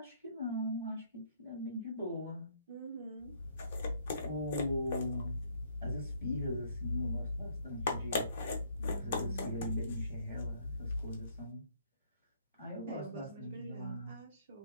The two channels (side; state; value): both; inverted; correlation -0.67